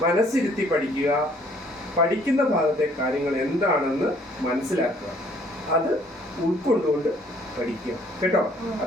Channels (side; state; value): both; normal; correlation 0.61